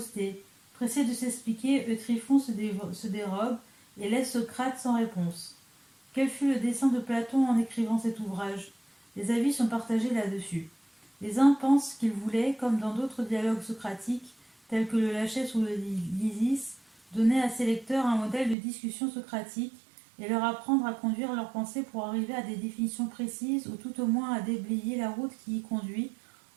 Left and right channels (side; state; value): left; drops out; at 18.6 s